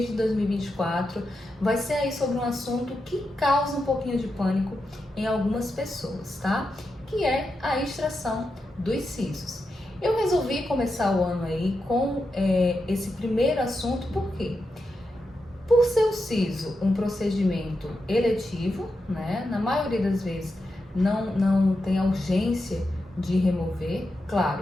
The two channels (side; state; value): both; normal; correlation 0.87